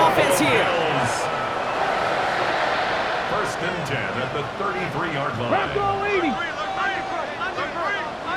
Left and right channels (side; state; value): both; identical; correlation 1.00